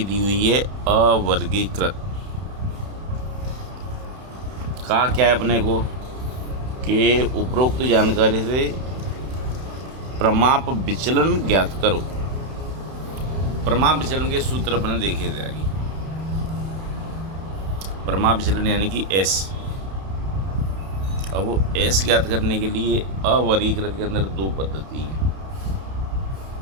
दी हुई है अवर्गीकृत। कहा क्या है अपने को कि उपरोक्त जानकारी से प्रमाप विचलन ज्ञात करो। प्रमाप विचलन के सूत्र अपने देखे थे आगे। प्रमाप विचलन यानी कि एस। अब वो एस ज्ञात करने के लिए अवर्गीकृत के अंदर दो पद्धति है।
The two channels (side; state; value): left; late; 31 ms